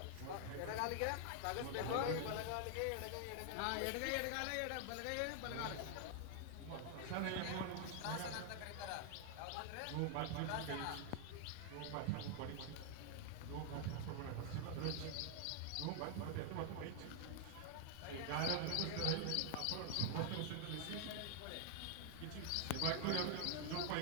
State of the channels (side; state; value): both; different; correlation 0.00